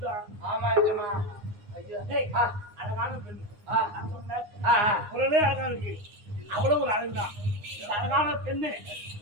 ஆமா அழகான பெண் குரலே அழகா இருக்கு. அவ்வளவு ஒரு அழகுதான். அழகான பெண்ணு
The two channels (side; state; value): left; late; 9.7 ms